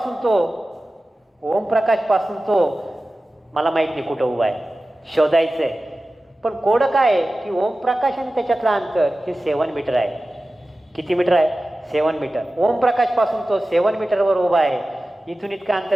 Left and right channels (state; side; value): normal; both; correlation 0.95